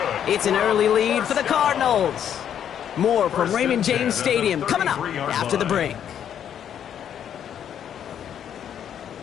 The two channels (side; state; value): right; quieter; 9.3 dB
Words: It's an early lead for the Cardinals. More from Raymond James Stadium coming up after the break.